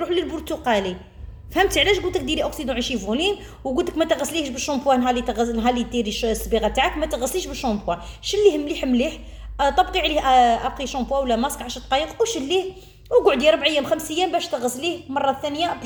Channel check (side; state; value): both; identical; correlation 1.00